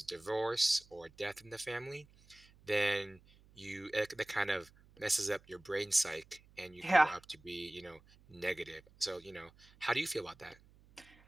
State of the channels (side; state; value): right; noise; hum, 27 dB below the sound